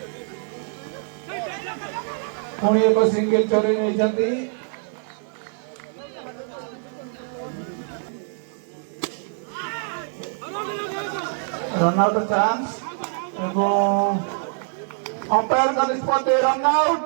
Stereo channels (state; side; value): silent; left; 56 dB below the other